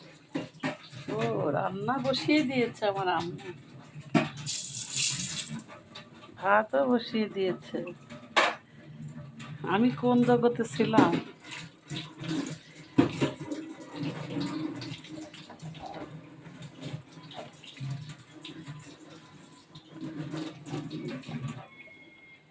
ও, রান্না বসিয়ে দিয়েছে আমার আম্মু। ভাতও বসিয়ে দিয়েছে। আমি কোন জগতে ছিলাম।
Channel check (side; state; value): both; identical; correlation 1.00